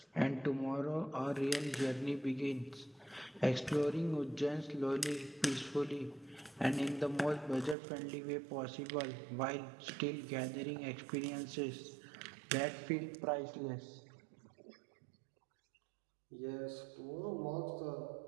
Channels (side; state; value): left; drops out; at 7.8 s